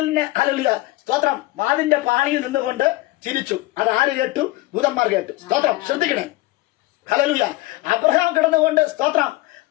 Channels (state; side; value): quieter; right; 19.2 dB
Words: ഹല്ലേലൂയ സ്തോത്രം വാതിലിന്റെ പാണിയിൽ നിന്നുകൊണ്ട് ചിരിച്ചു. അത് ആര് കേട്ടു? ദൂതന്മാർ കേട്ടു. സ്തോത്രം. ശ്രദ്ധിക്കണേ. ഹല്ലേലൂയ. അബ്രഹാം കിടന്നുകൊണ്ട് സ്തോത്രം